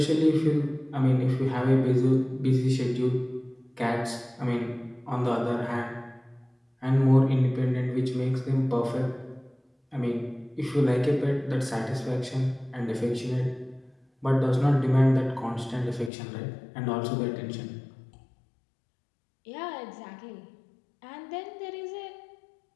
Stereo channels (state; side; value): drops out; right; at 16.1 s